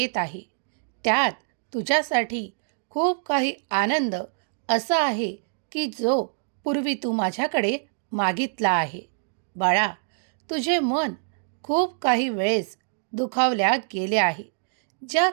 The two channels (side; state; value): left; silent; digital silence